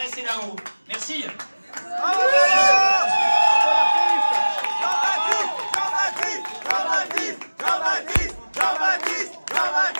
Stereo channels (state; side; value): inverted; both; correlation -1.00